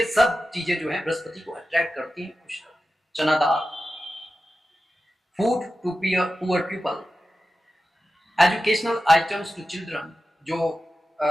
सब चीजें जो है बृहस्पति को अट्रैक्ट करती हैं, खुश करती हैं. Chana dal. Food to poor people. Educational items to children. जो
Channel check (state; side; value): normal; both; correlation 0.92